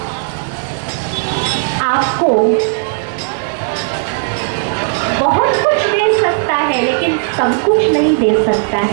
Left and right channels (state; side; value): silent; left; digital silence